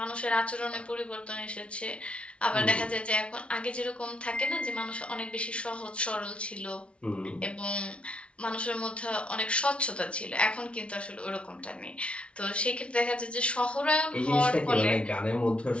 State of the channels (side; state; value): right; late; 0.060 ms